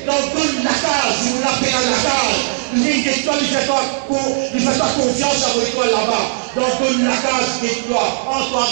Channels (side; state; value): left; silent; 68 dB below the other